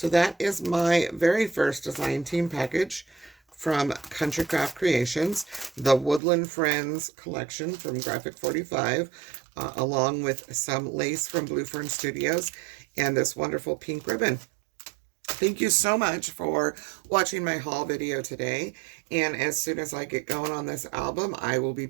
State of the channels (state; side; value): drops out; left; at 6.2 s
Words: that is my very first design team package from Country Craft Creations, the Woodland Friends collection from Graphic 45, along with some lace from Blue Fern Studios, and this wonderful pink ribbon. Thank you so much for watching my haul video today. And as soon as I get going on this album, I will be